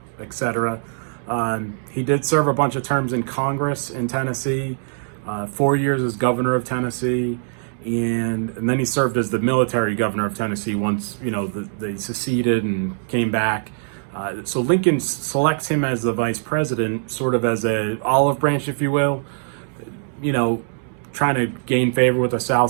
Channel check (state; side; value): silent; left; digital silence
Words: etc. He did serve a bunch of terms in Congress in Tennessee, 4 years as governor of Tennessee. And then he served as the military governor of Tennessee once, they seceded and came back. So Lincoln selects him as the vice president, sort of as a olive branch, if you will, trying to gain favor with the South.